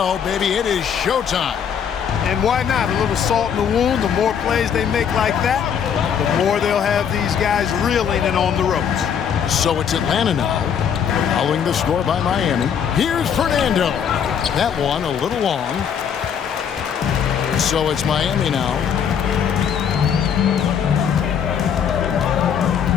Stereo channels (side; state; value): right; quieter; 7.9 dB